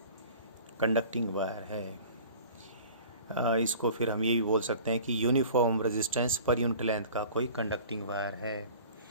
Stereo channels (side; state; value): both; inverted; correlation -0.44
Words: कंडक्टिंग वायर है, इसको फिर हम ये भी बोल सकते हैं कि uniform resistance per unit length का कोई कंडक्टिंग वायर है,